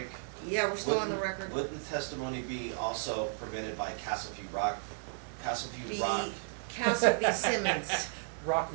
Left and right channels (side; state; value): left; silent; digital silence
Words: Yeah, we're still on the Wouldn't- record. Would the testimony be also prevented by Castleview Rock? Castleview The Rock. Castle v. Simmons. Rock